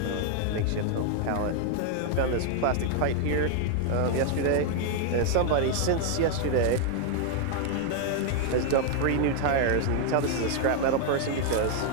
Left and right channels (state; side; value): different; both; correlation 0.00